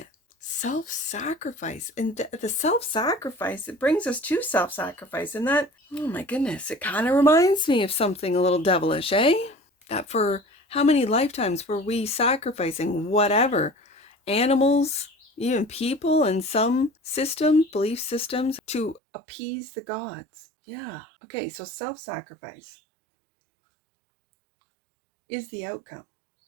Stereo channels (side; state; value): left; drops out; at 19.0 s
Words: Self-sacrifice. And the self-sacrifice, it brings us to self-sacrifice. And that, oh my goodness, it kind of reminds me of something a little devilish, eh? That for how many lifetimes were we sacrificing whatever? Animals, even people, and some systems, belief systems, to appease the gods. Yeah. Okay, so self-sacrifice is the outcome.